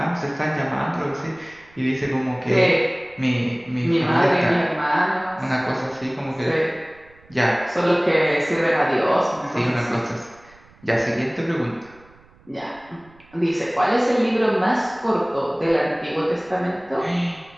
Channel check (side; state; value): right; noise; rumble, 28 dB below the sound